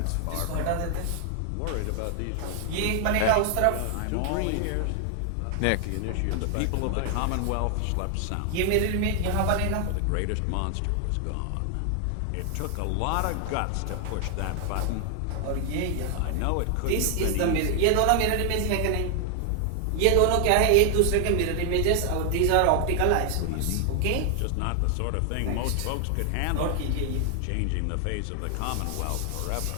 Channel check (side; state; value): both; different; correlation 0.00